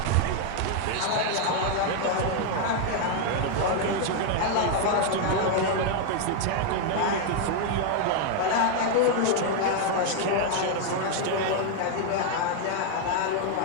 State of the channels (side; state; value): both; different; correlation 0.00